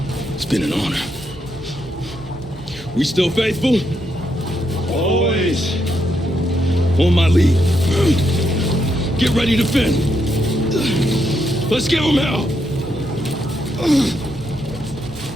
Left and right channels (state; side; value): normal; both; correlation 0.79